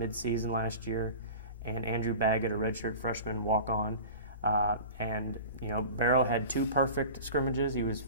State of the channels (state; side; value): inverted; both; correlation -0.36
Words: last year, and Andrew Baggett, a redshirt freshman walk-on. Barrow had two perfect scrimmages. He was